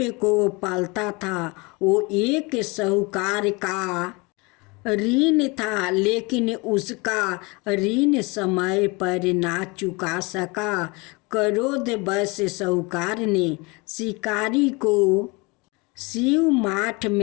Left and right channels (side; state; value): right; quieter; 27.1 dB